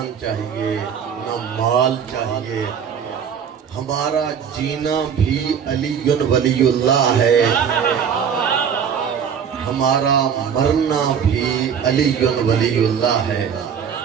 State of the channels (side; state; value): left; quieter; 7.5 dB